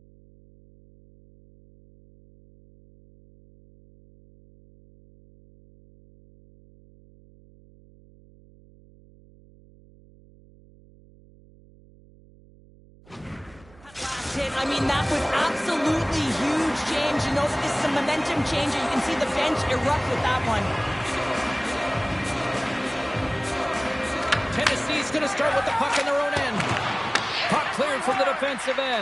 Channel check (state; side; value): noise; right; hum, 25 dB below the sound